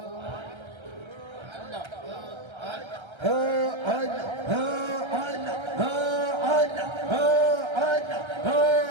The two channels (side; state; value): left; late; 1.3 ms